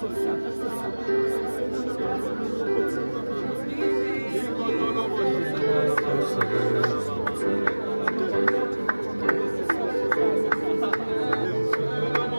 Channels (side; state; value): both; inverted; correlation -1.00